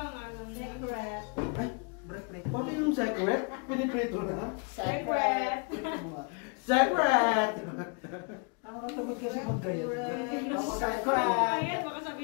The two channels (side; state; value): right; quieter; 35.9 dB